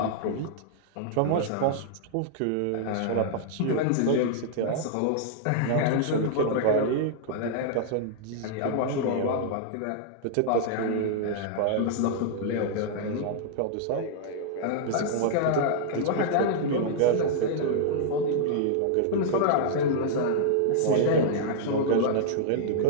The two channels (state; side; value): different; both; correlation -0.01